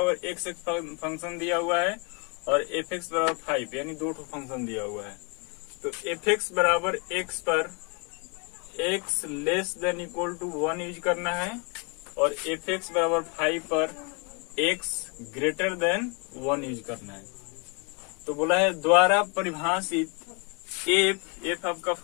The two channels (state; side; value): quieter; right; 33.3 dB